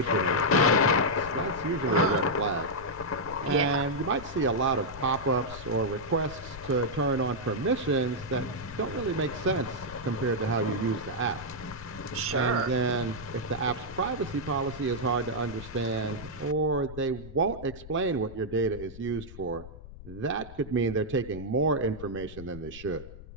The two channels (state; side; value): noise; left; rumble, 15 dB below the sound